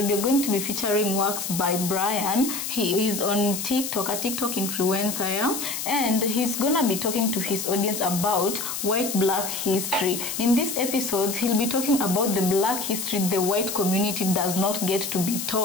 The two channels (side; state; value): left; noise; hiss, 5 dB below the sound